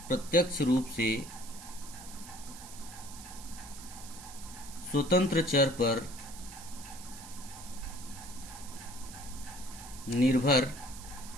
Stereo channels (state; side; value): noise; right; hiss, 14 dB below the sound